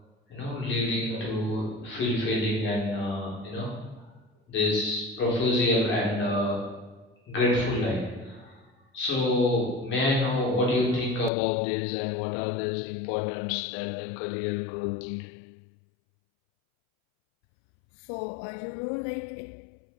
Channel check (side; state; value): right; drops out; at 11.3 s